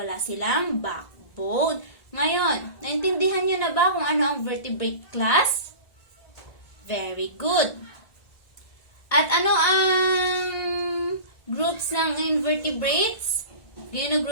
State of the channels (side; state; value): right; late; 1.7 ms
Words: silang backbone. Ngayon, naintindihan niyo na ba kung ano ang vertebrate class? Very good. At ano ang groups ng invertebrates?